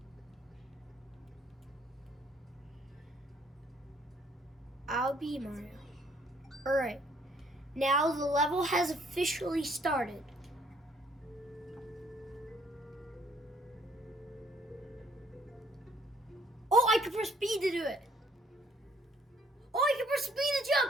I'll be Mario. Alright. Now the level has officially started. Oh, I can press B to do it. Oh, I can press B to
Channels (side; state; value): both; normal; correlation 0.64